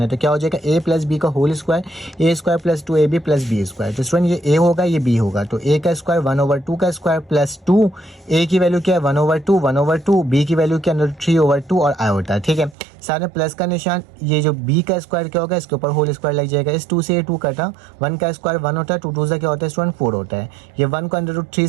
है, तो क्या हो जाएगा a प्लस बी का whole square, a square plus 2ab plus B square. तो स्टूडेंट ये a होगा ये b होगा, तो a का स्क्वायर 1/2 का स्क्वायर प्लस 2, a की वैल्यू क्या है 1/2, b की वैल्यू क्या है 3/2 और आयोटा, ठीक है। साथ में प्लस का निशान, ये जो b का स्क्वायर क्या होगा इसके ऊपर होल स्क्वायर लग जाएगा। इस 2 से ये 2 कटा, 1 का स्क्वायर 1 होता है, 2 2 क्या होता है स्टूडेंट 4 होता है। ये 1 को √3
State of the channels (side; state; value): left; drops out; at 12.8 s